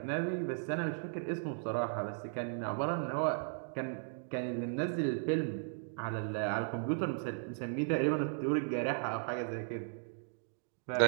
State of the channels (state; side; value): silent; left; digital silence